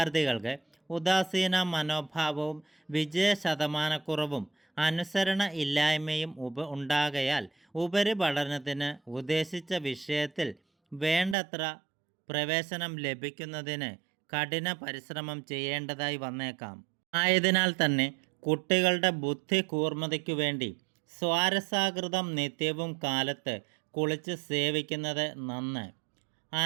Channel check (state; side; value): drops out; left; at 11.4 s